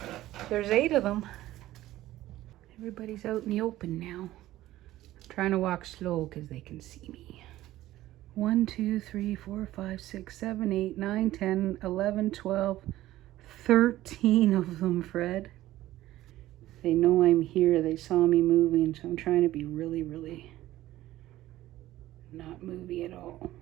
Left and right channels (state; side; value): quieter; left; 15.2 dB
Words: There's 8 of them. Everybody's out in the open now. I'm trying to walk slow because they can see me. 1, 2, 3, 4, 5, 6, 7, 8, 9, 10, 11, 12, 13 of them, Fred. They know I'm here. They saw me moving, so I'm trying to be really, really not movie at all.